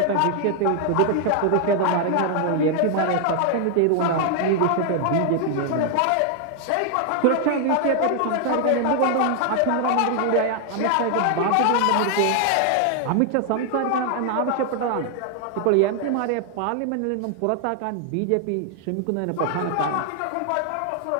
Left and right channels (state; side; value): different; both; correlation 0.00